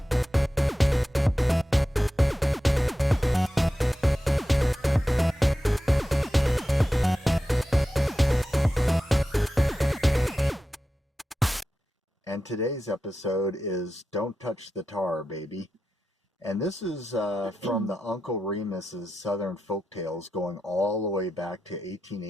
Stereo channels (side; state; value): both; normal; correlation 0.91